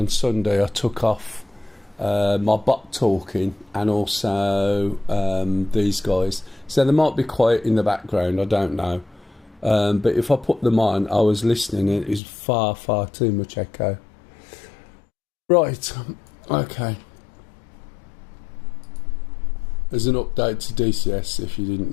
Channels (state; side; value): drops out; right; at 12.2 s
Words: Sunday, I took off my bot talking and also these guys. So they might be quiet in the background, I don't know. But if I put them on, I was listening and it was far, far too much echo. Right, okay. There's an update to DCS if you didn't